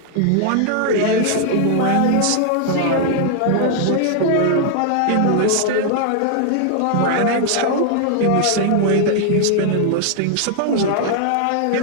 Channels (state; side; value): different; both; correlation 0.00